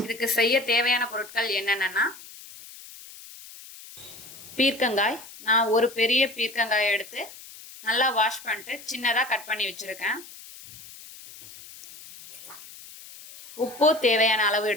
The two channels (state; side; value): noise; left; hiss, 17 dB below the sound